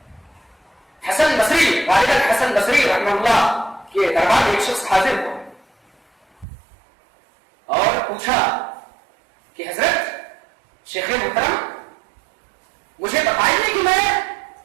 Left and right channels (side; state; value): left; drops out; at 6.5 s